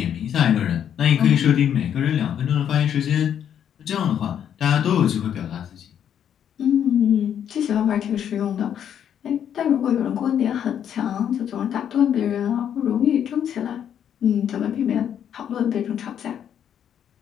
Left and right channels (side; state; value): right; quieter; 9.2 dB